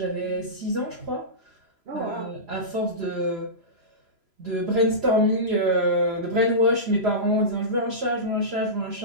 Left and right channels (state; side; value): late; left; 3.0 ms